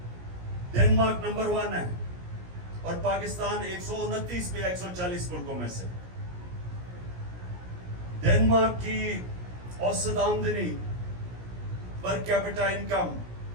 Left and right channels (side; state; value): left; late; 17 ms